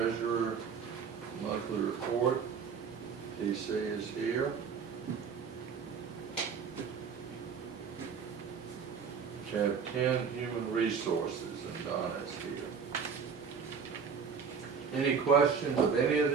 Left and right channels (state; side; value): quieter; left; 6.2 dB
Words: monthly report. TC is here. Tab 10, human resources, and Donna is here. Any questions of any of